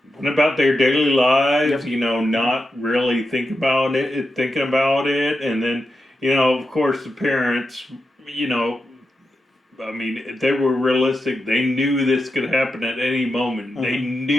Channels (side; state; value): both; normal; correlation 0.88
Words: went about their daily lives, not really thinking about it. And then, of course, the parents, I mean, they were realistic. They knew this could happen at any moment. Mm-hmm. They